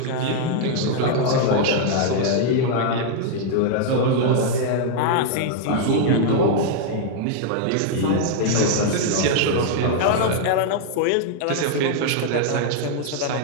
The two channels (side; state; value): both; different; correlation 0.00